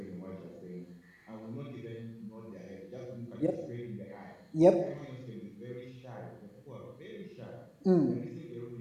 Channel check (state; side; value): identical; both; correlation 1.00